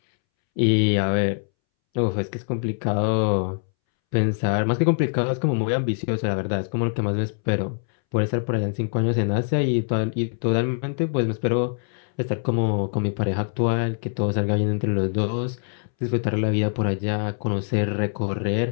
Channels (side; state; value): right; silent; 63 dB below the other